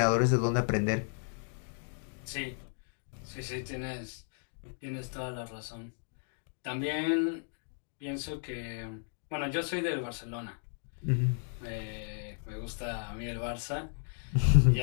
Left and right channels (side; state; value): right; silent; 55 dB below the other